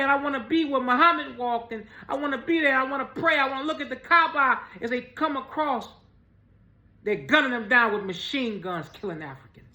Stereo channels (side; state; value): both; identical; correlation 1.00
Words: I want to be where Muhammad walked, and I want to be there. I want to pray. I want to look at the Kaaba. As they come across, they're gunning them down with machine guns, killing Africans.